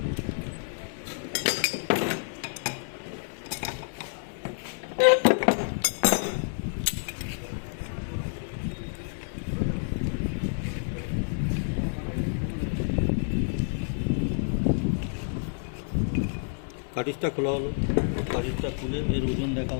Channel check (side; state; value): right; silent; digital silence